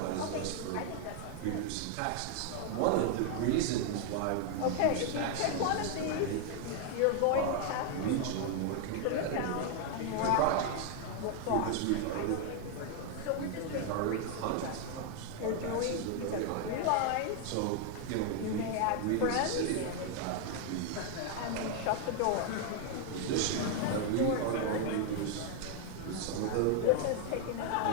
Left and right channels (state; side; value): different; both; correlation 0.00